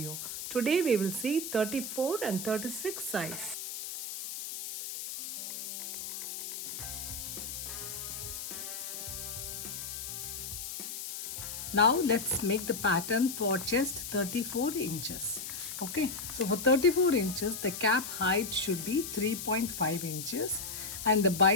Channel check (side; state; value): left; noise; hiss, 7 dB below the sound